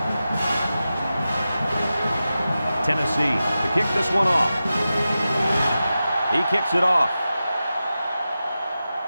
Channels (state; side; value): inverted; both; correlation -0.93